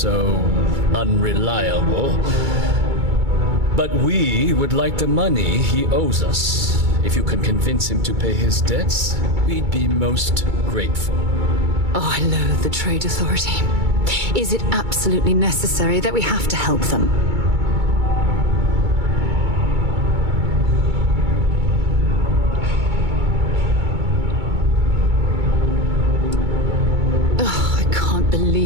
unreliable. But we would like the money he owes us. If you can convince him to pay his debts, we'd be most grateful. Oh, I loathe the Trade Authority. Is it absolutely necessary that we have to help them? Ugh, I can't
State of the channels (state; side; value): late; left; 2.3 ms